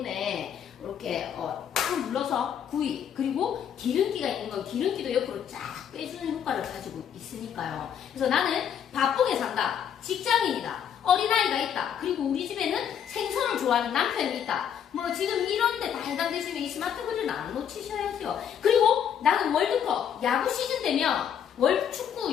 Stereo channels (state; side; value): quieter; right; 8.7 dB